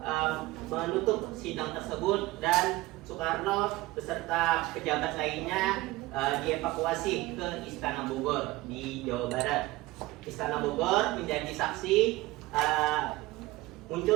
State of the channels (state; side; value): quieter; left; 19.2 dB